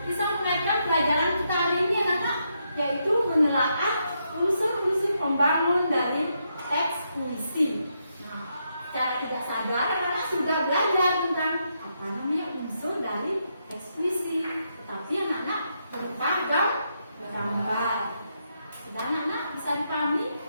bisa mengaitkan pelajaran kita hari ini anak-anak, yaitu menelaah unsur-unsur pembangun dari teks puisi. Nah, secara tidak sadar anak-anak sudah belajar tentang apa namanya unsur dari teks puisi, tetapi anak-anak berupa gambar. Sudah anak-anak bisa dipahami?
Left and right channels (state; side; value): inverted; both; correlation -0.80